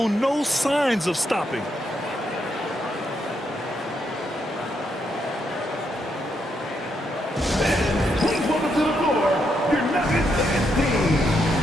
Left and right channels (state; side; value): normal; both; correlation 0.79